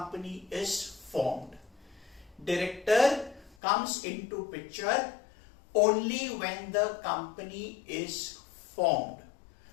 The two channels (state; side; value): drops out; right; at 3.6 s